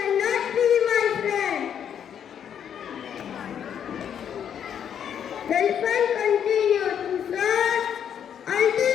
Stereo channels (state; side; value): quieter; right; 8.7 dB